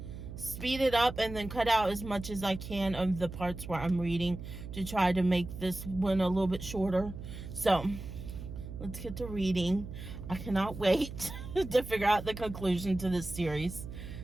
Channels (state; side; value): noise; right; hum, 10 dB below the sound